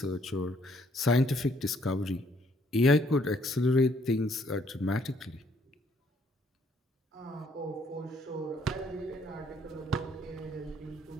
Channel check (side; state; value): both; normal; correlation 0.66